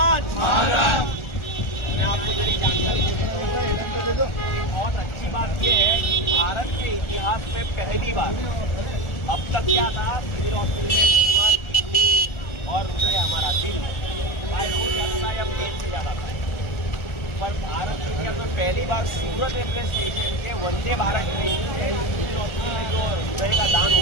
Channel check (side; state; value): right; late; 1.4 ms